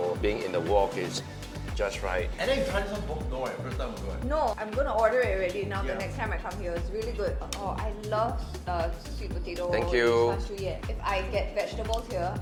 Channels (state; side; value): identical; both; correlation 1.00